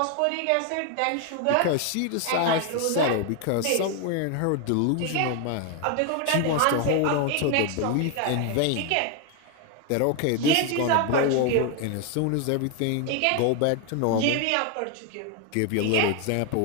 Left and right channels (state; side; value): different; both; correlation 0.01